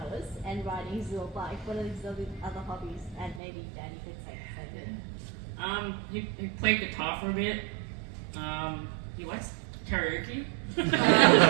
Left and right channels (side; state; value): left; drops out; at 3.4 s